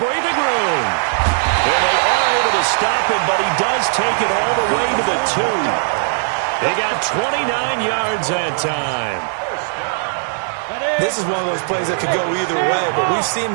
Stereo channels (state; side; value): silent; left; digital silence